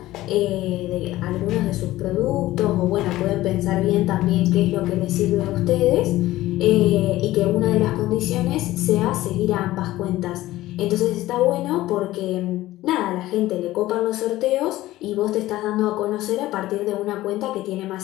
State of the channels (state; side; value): quieter; right; 16.3 dB